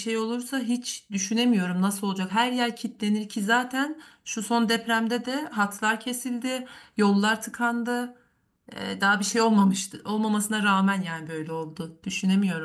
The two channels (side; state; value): both; identical; correlation 1.00